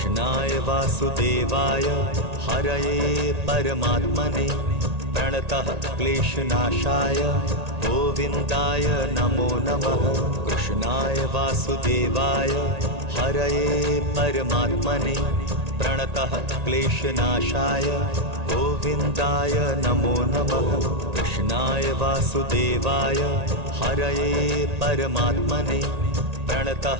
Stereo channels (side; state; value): left; late; 1.8 ms